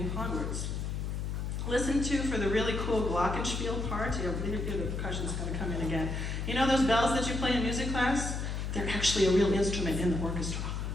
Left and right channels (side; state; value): left; noise; hum, 3 dB below the sound